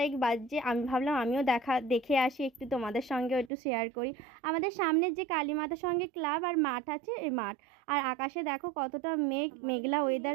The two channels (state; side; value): drops out; left; at 3.5 s